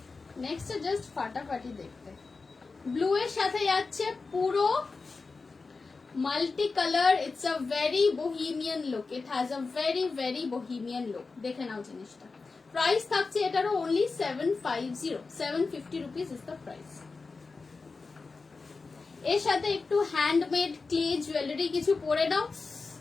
নেক্সটটা জাস্ট ফাটাফাটি দেখতে। ব্লু এর সাথে যাচ্ছে পুরো multi colour. It's a very bohemian look, it has a very very bohemian look. দেখে নাও জিনিসটা। প্রাইস থাকছে এটারও only 750 rupees is the price. এর সাথে একটু হ্যান্ডমেড ক্লে জুয়েলারি কিছু পরে নাও,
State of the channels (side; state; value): right; quieter; 4.2 dB